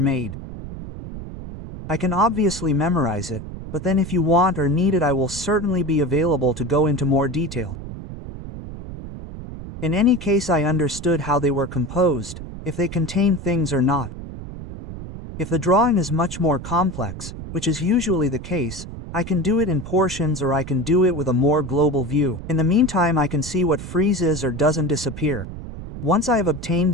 I can obviously memorize it, but then if you want or need it I will certainly be available to go into more detail. In any case I understood how they were composed, if they contain things or not. If the drawing is much more complex, which is usually the case, I can do it in portions or I can do it with a more global view. In the meantime I can see what freezes or doesn't disappear. Once I have obtained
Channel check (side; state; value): right; noise; rumble, 10 dB below the sound